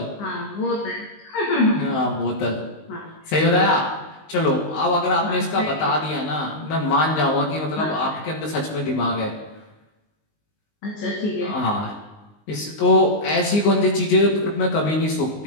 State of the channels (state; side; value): late; right; 19 ms